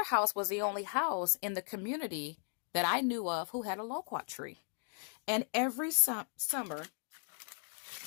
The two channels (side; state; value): right; silent; 53 dB below the other